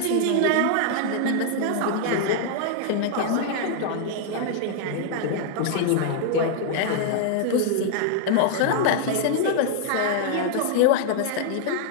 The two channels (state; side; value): different; both; correlation -0.01